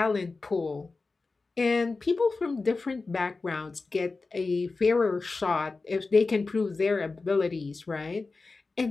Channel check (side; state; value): right; quieter; 3.8 dB